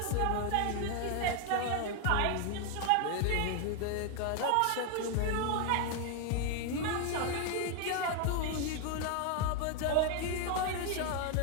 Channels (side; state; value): both; different; correlation 0.01